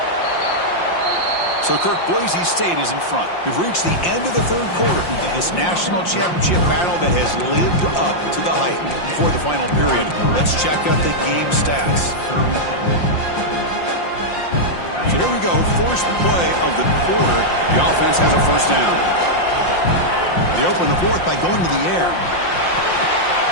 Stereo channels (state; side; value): late; right; 5.7 ms